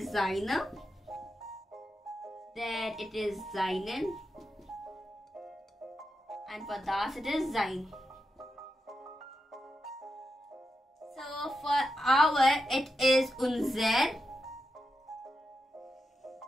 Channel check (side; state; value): both; normal; correlation 0.87